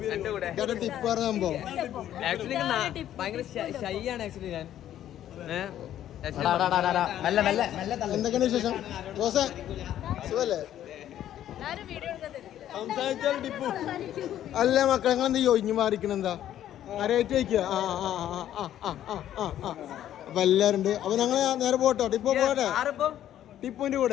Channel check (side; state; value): right; quieter; 11.6 dB